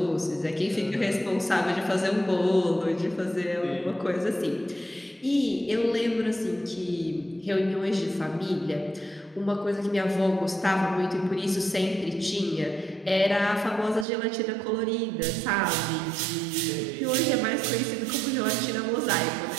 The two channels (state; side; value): drops out; left; at 14.1 s